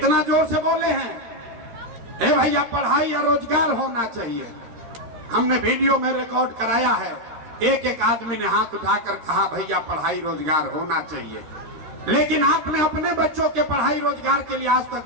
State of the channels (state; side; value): late; left; 13 ms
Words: जोर से बोले हैं, ए भैया पढ़ाई या रोजगार होना चाहिए। हमने वीडियो में रिकॉर्ड कराया है, एक एक आदमी ने हाथ उठाकर कहा भैया पढ़ाई रोजगार होना चाहिए। लेकिन आपने अपने बच्चों के पढ़ाई रोजगार के लिए आज तक